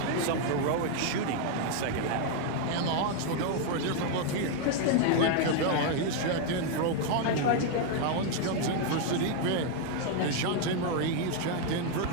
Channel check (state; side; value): different; both; correlation 0.00